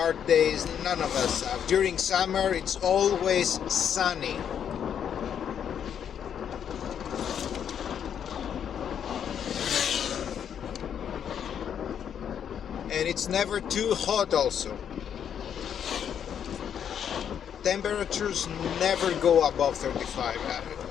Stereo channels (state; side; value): quieter; right; 8.6 dB